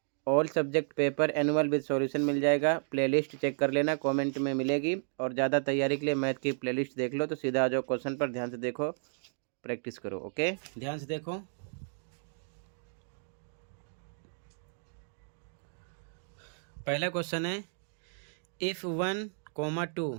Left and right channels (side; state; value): left; silent; digital silence